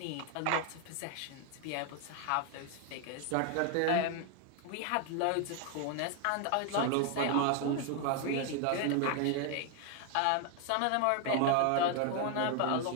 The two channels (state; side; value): different; both; correlation 0.01